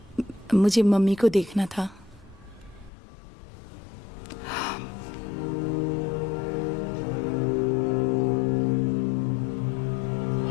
मुझे मम्मी को देखना था।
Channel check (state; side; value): drops out; right; at 2.9 s